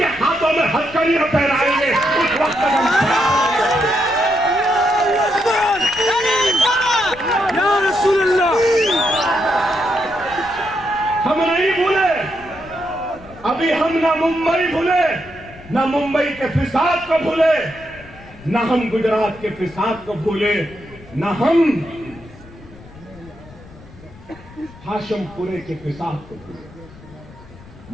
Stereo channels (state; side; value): noise; left; rumble, 21 dB below the sound